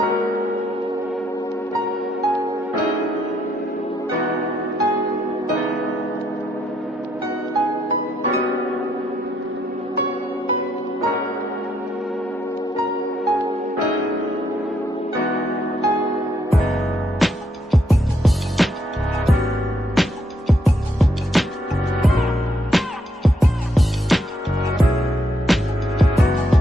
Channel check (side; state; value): both; normal; correlation 0.74